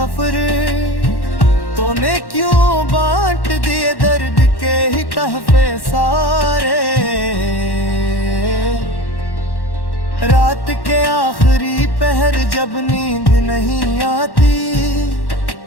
तूने क्यों बांट दिए दर्द के ही तहफे सारे। रात के आखिरी पहर जब नींद नहीं आती,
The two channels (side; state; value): right; late; 1.1 ms